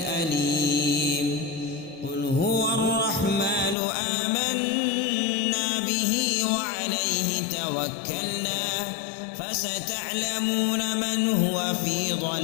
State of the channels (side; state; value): right; drops out; at 3.8 s